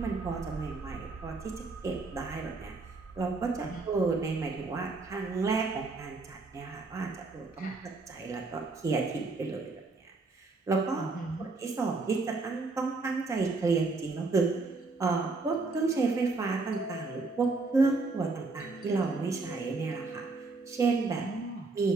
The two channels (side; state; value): left; quieter; 3.7 dB